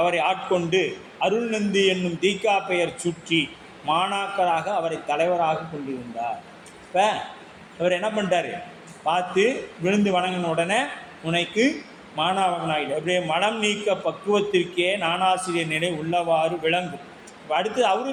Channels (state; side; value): identical; both; correlation 1.00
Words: ஆட்கொண்டு அருள்நந்தி என்னும் தீக்கா பெயர் சுற்றி மாணாக்கராக அவரை தலைவராக கொண்டிருந்தார். இப்போ அவர் என்ன பண்ணிட்டார்? பார்த்து விழுந்து வணங்கின உடனே உனக்கு மாணவனாயிடு, அப்படியே மனம் நீக்க பக்குவத்திற்கே நானாசிரியர் நிலை உள்ளவாறு விளங்கும். இப்போ அடுத்து